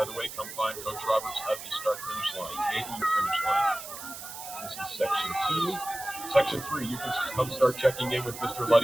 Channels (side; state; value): right; noise; hiss, 11 dB below the sound